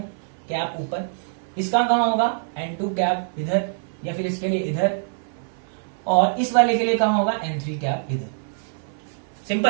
कैप ऊपर, इसका कहां होगा n2 कैप इधर, या फिर इसके लिए इधर, और इस वाले के लिए कहां होगा n3 कैप इधर।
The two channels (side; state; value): left; silent; 58 dB below the other